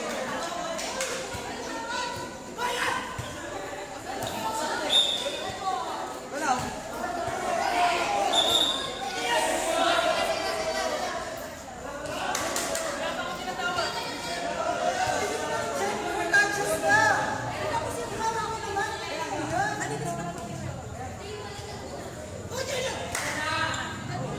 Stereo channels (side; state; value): both; identical; correlation 1.00